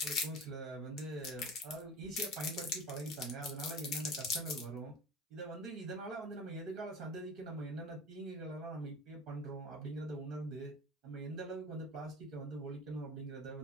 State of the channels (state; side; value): normal; both; correlation 0.36